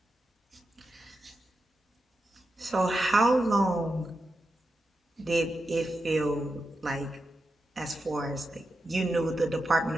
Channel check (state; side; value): normal; both; correlation 0.88